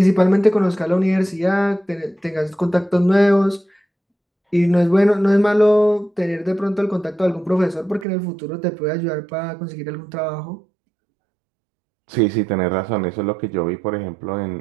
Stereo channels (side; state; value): left; drops out; at 8.1 s